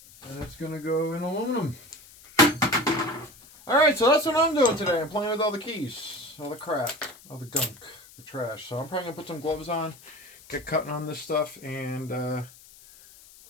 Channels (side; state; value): left; noise; hiss, 22 dB below the sound